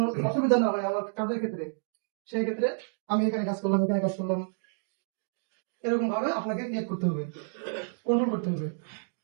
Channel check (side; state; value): left; silent; digital silence